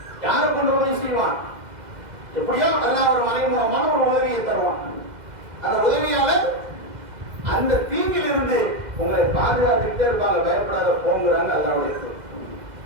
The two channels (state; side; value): late; left; 2.0 ms